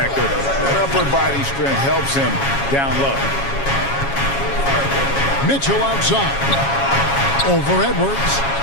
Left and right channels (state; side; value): late; right; 7.3 ms